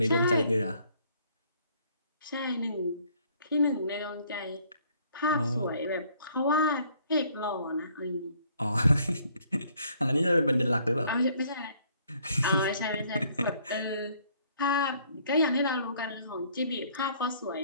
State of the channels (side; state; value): both; inverted; correlation -0.62